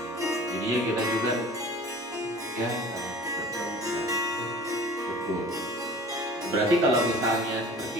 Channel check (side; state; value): both; normal; correlation 0.43